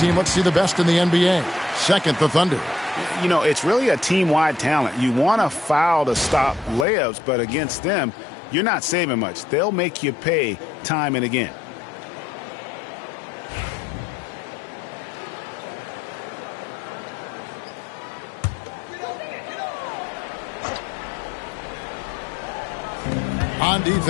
Let's see the best in the NBA. Second, the Thunder. You know, it's really a team-wide talent. You want to foul to stop layups, but against them, you're not saving much. They'll make you pay time and again. On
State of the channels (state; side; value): drops out; right; at 6.9 s